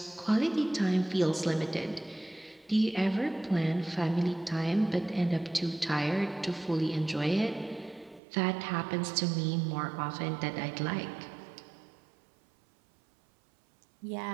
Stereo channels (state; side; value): drops out; left; at 8.2 s